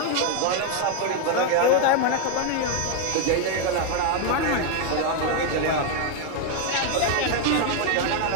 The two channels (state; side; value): different; both; correlation 0.01